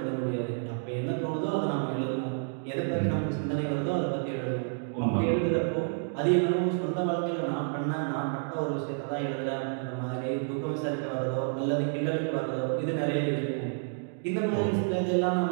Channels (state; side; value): silent; left; digital silence